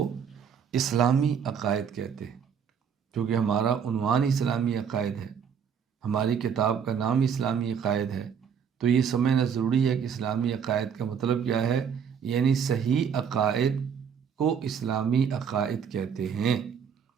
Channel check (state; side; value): quieter; left; 7.4 dB